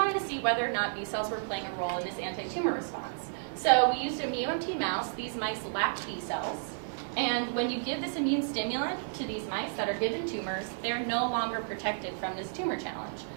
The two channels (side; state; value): left; silent; 57 dB below the other